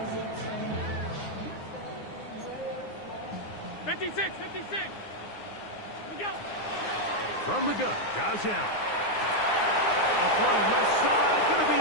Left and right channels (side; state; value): right; late; 9.7 ms